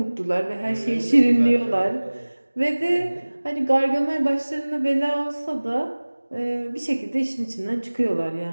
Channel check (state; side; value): inverted; both; correlation -1.00